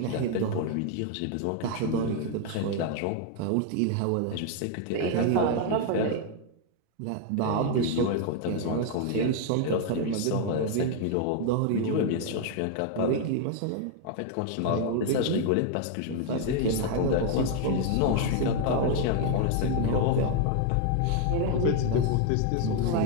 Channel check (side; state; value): both; different; correlation 0.00